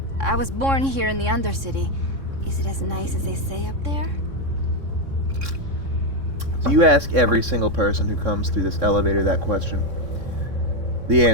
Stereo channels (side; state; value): left; late; 3.6 ms